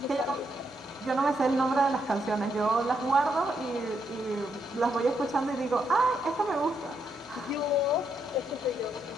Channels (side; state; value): both; normal; correlation 0.78